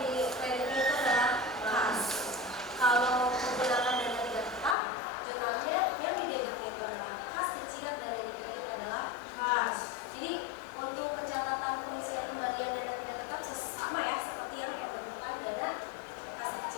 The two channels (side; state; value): right; drops out; at 4.8 s